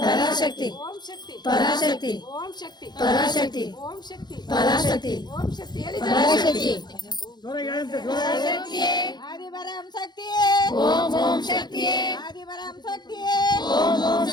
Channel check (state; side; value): late; right; 0.21 ms